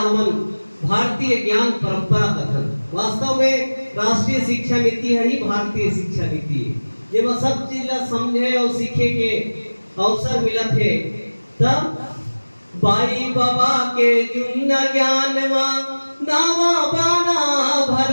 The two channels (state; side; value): inverted; both; correlation -1.00